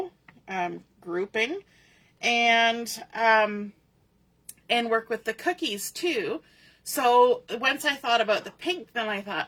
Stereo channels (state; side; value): identical; both; correlation 1.00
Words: grouping, and work with the cookies too. So once I thought about the pink, then I